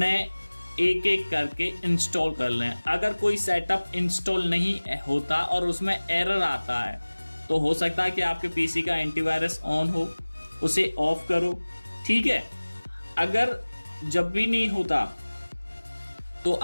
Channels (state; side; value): inverted; both; correlation -1.00